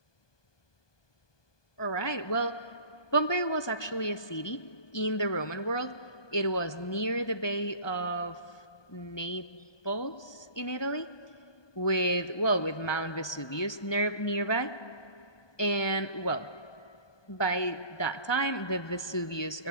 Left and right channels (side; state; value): right; late; 1.2 ms